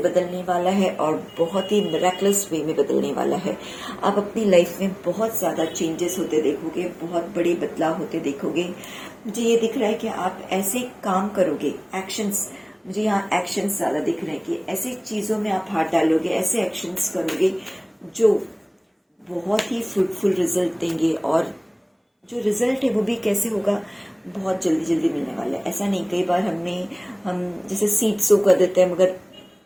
वाला है और बहुत ही मिरेकलस वे में बदलने वाला है। आप अपनी लाइफ में बहुत ज़्यादा चेंजेस होते देखोगे, बहुत बड़े बदलाव होते देखोगे। मुझे ये दिख रहा है कि आप ऐसे काम करोगे, एक्शंस, मुझे यहाँ एक्शंस ज़्यादा दिख रहे हैं कि ऐसी चीज़ों में आप हाथ डालोगे, ऐसे एक्शंस करोगे जो बहुत ही फ्रूटफुल रिजल्ट देंगे। और जो रिजल्ट है वो भी कैसे होगा, बहुत जल्दी जल्दी मिलने वाला है। ऐसा नहीं, कई बार हम जैसे सीड सो कर देते हैं मगर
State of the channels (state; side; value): identical; both; correlation 1.00